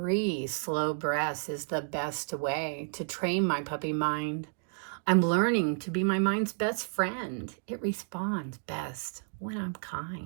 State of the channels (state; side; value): silent; left; digital silence